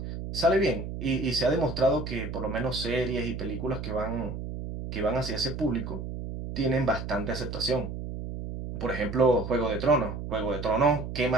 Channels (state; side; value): noise; right; hum, 7 dB below the sound